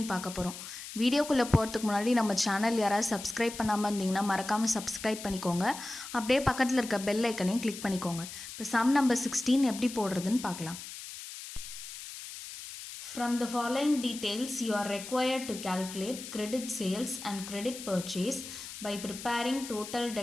பார்க்க போகிறோம். வீடியோக்குள்ளே போகிறதுக்கு முன்னாடி நம்ம சேனல் யாராவது சப்ஸ்கிரைப் பண்ணாமல் இருந்தீங்கன்னா மறக்காமல் சப்ஸ்கிரைப் பண்ணிக்கோங்க. அப்படியே பக்கத்தில் இருக்க பெல் ஐக்கனையும் கிளிக் பண்ணிக்கோங்க. இப்போ சம் நம்பர் 16 எப்படி போடுறதுன்னு பார்க்கலாம். From the following details, you are required to calculate credit sales and credit purchase by preparing total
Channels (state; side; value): noise; left; hiss, 11 dB below the sound